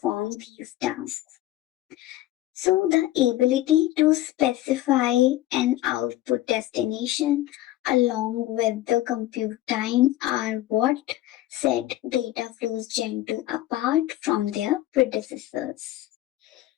these tasks. So the ability to specify an output destination along with the compute time are what set data flows Gen 2 apart from their predecessors.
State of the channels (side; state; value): right; quieter; 14.9 dB